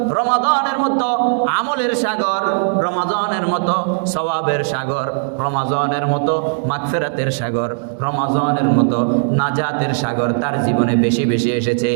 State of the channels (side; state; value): left; silent; digital silence